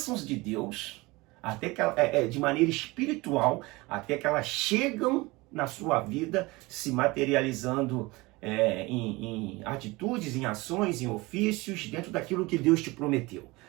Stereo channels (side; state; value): left; quieter; 22.7 dB